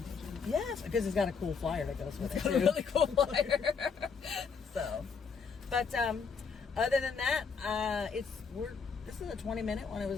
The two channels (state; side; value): quieter; right; 5.7 dB